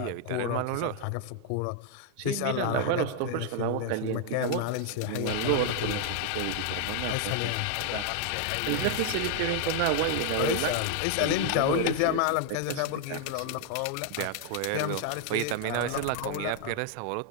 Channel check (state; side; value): different; both; correlation 0.00